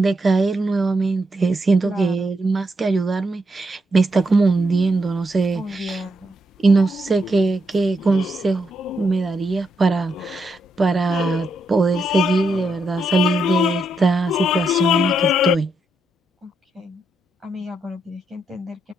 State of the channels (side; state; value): both; normal; correlation 0.81